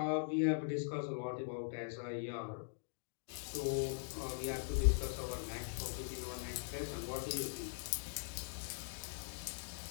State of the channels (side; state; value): right; silent; digital silence